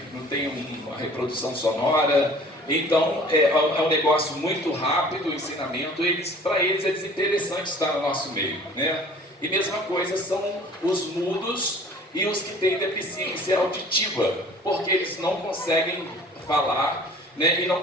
não tem uma reprodução sonora, então é um negócio muito rápido o ensinamento, para eles é desinteressante estar no nosso meio, né? E mesma coisa são os mudos e os que têm deficiência auditiva, porque eles não conseguem falar, né, e não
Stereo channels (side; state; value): both; normal; correlation 0.48